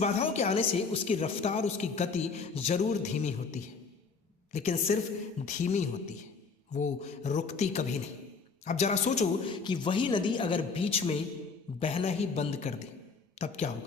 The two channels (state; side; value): quieter; right; 4.8 dB